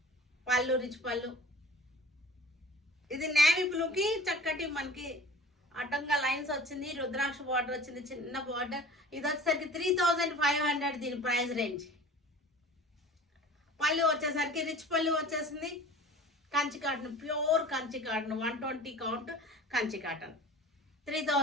పళ్ళు రిచ్ పళ్ళు. ఇది నేవీ బ్లూకి చక్కటి మనకి అడ్డంగా లైన్స్ వచ్చింది. రుద్రాక్ష బార్డర్ వచ్చింది, చిన్న బార్డర్. ఇది వచ్చేసరికి 3500 దీని ప్రైస్ రేంజ్. పళ్ళు వచ్చేసరికి రిచ్ పళ్ళు వచ్చేసింది. Kanchi cotton, pure Kanchi cotton, 120 count Kanchi cotton.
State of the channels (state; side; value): normal; both; correlation 0.42